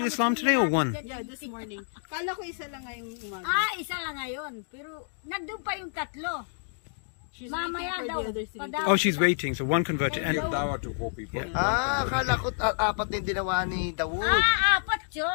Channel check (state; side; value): silent; right; digital silence